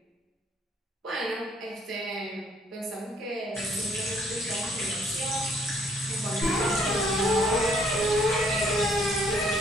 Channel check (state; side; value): normal; both; correlation 0.64